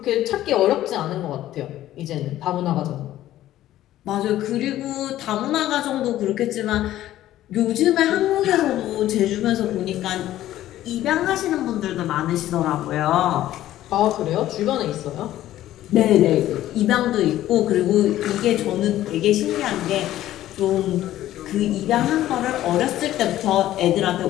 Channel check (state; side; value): quieter; right; 13.7 dB